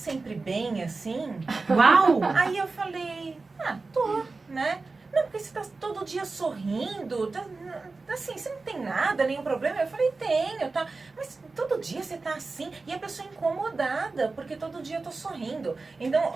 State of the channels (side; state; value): left; quieter; 3.8 dB